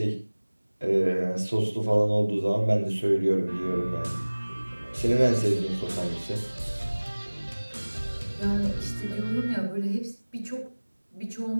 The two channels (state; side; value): inverted; both; correlation -1.00